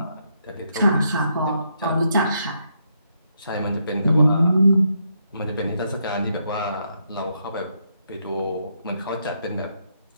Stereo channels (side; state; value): both; inverted; correlation -0.78